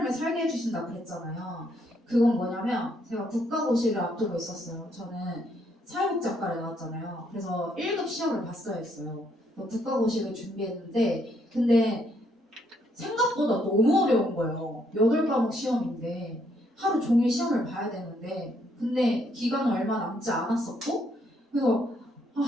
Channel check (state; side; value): normal; both; correlation 0.72